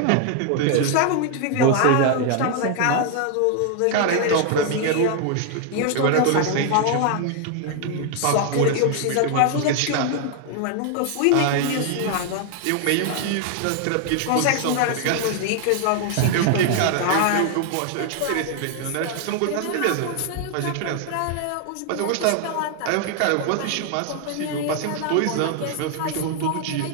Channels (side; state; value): both; different; correlation 0.00